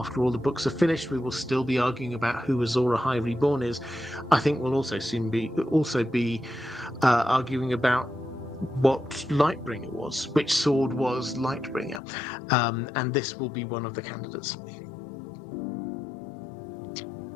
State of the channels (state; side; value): drops out; right; at 12.0 s